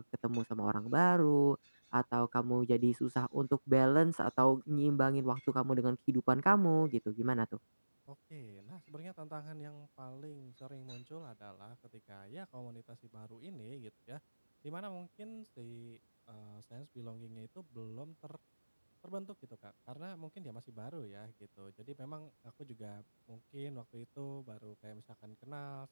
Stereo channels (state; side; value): inverted; both; correlation -1.00